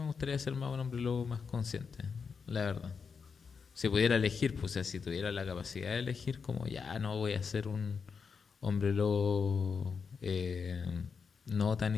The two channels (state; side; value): quieter; right; 5.7 dB